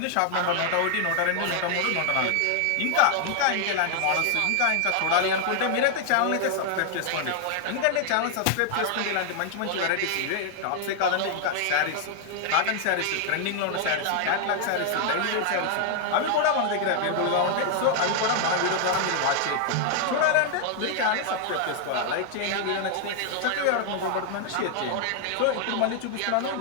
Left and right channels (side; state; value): both; different; correlation 0.00